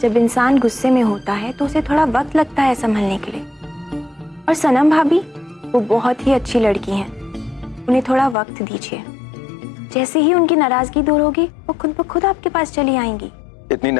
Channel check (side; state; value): right; drops out; at 8.3 s